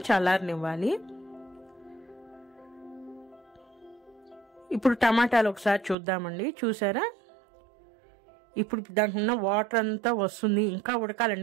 చల్లారనివ్వాలి. ఇప్పుడు టమాటాలు ఒకసారి చూద్దామండి. చూసారా, ఇప్పుడు దాంట్లో ఉన్న వాటర్ అంతా వస్తుంది, ఇంకా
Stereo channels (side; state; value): left; drops out; at 6.0 s